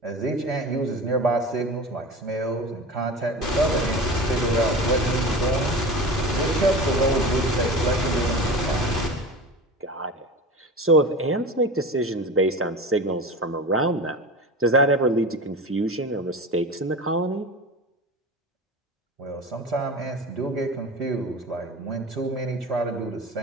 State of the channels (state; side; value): normal; both; correlation 0.31